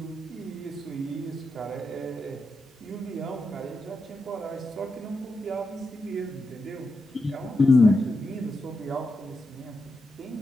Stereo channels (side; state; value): both; normal; correlation 0.87